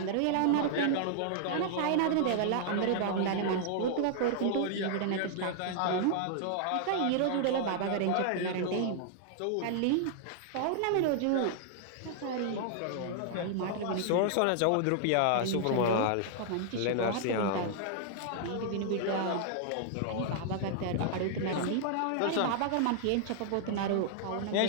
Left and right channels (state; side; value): different; both; correlation -0.01